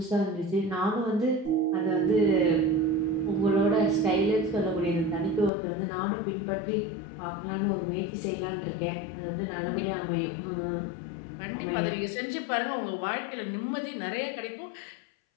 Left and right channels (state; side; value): drops out; right; at 5.5 s